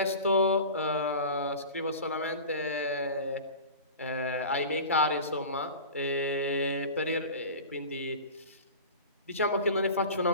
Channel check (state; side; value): inverted; both; correlation -0.34